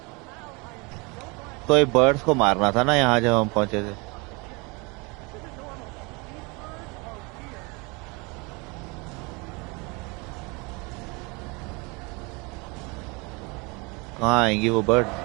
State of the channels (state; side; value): quieter; left; 28.2 dB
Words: तो ये बर्ड्स को मारना था ना यहाँ जब हम पहुंचे थे. कहाँ आएंगी वो बर्ड?